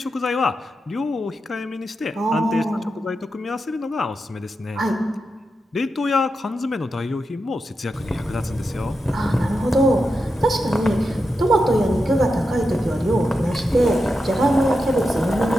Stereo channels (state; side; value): normal; both; correlation 0.88